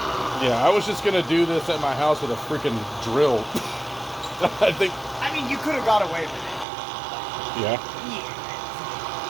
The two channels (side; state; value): left; drops out; at 6.7 s